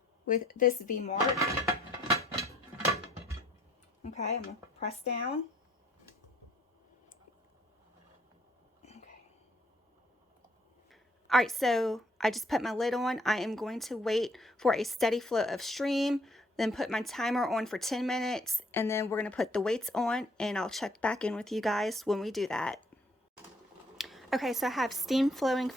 with this V mark. Okay, I'm gonna press down. All right, so I just put my lid on. I am going to wait for a steady flow of stream, then put my timer on for 10 minutes, and then we're gonna put the weights on, and I'll check back in with you guys when we do that. Okay, so I have steam flowing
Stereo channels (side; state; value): both; normal; correlation 0.63